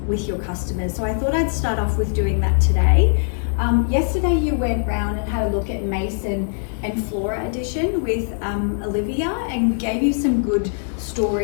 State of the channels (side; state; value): right; silent; 63 dB below the other